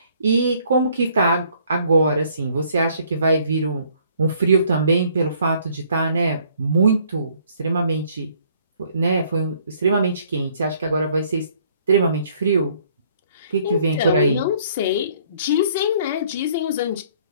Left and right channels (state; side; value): inverted; both; correlation -0.62